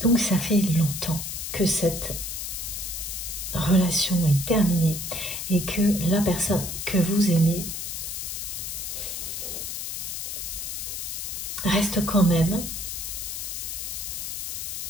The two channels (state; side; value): noise; left; hiss, 5 dB below the sound